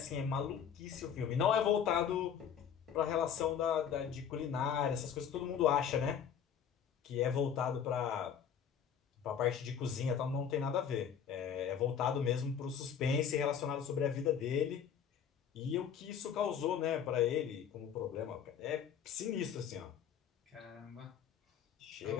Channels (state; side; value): quieter; right; 8.0 dB